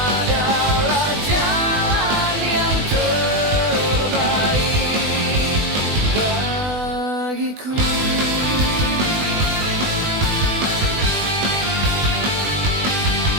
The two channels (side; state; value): left; late; 20 ms